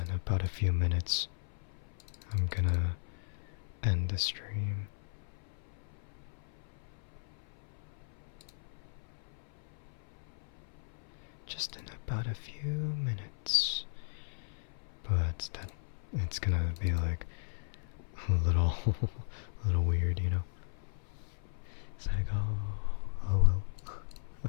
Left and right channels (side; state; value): right; silent; 53 dB below the other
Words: in about a few minutes, I'm gonna end the stream. Just in about a few minutes. But it's gonna be like a little, a little weird, It's like, oh well.